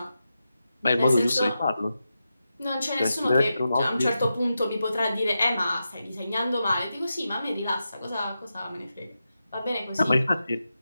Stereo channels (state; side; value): inverted; both; correlation -0.89